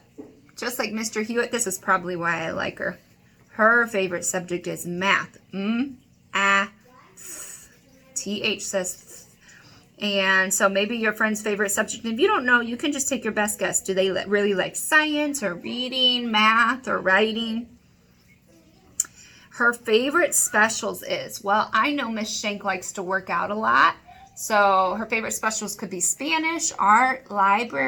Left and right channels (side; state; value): both; identical; correlation 1.00